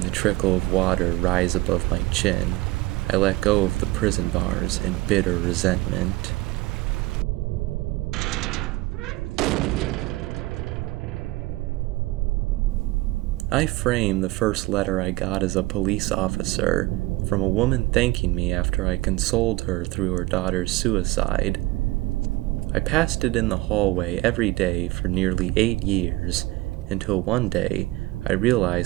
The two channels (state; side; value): quieter; left; 20.0 dB